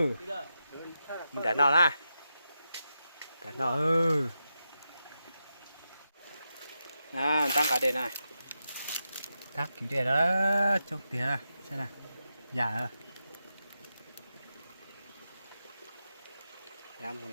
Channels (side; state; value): both; inverted; correlation -0.88